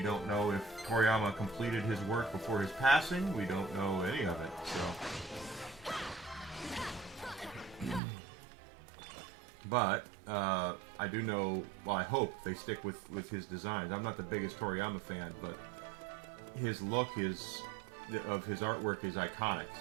don't know if Toriyama completed his work before his passing. We don't know any of it. So, but I do know. Well, I hope they stick with his designs. I'm not the biggest Toriyama fan, but his look of his artwork is iconic,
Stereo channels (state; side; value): drops out; left; at 8.0 s